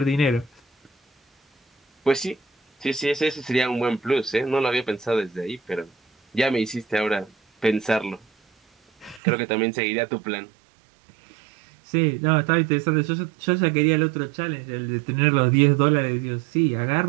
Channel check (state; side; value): drops out; left; at 9.2 s